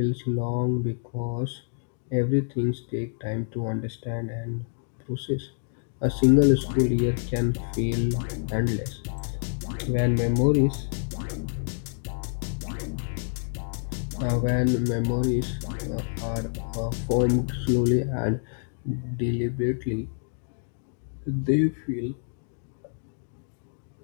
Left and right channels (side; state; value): right; silent; digital silence